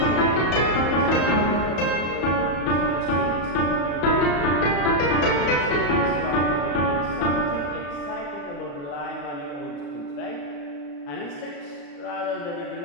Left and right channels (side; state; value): right; late; 34 ms